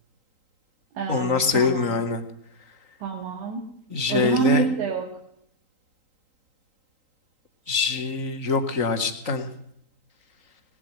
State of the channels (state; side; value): late; left; 3.8 ms